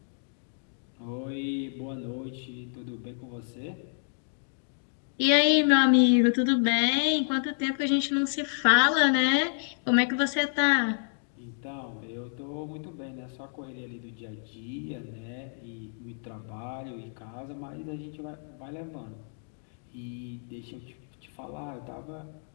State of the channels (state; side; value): silent; right; digital silence